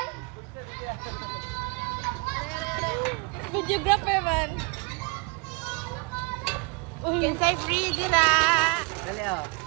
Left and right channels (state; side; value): quieter; left; 30.0 dB